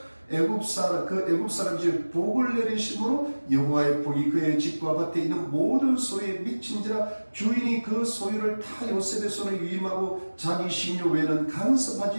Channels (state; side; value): inverted; both; correlation -1.00